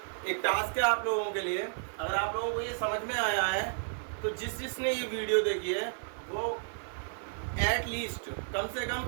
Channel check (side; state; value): left; silent; digital silence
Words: एक टास्क है आप लोगों के लिए, अगर आप लोगों को ये समझ में आया है तो जिसने ये वीडियो देखी है वो एटलीस्ट कम से कम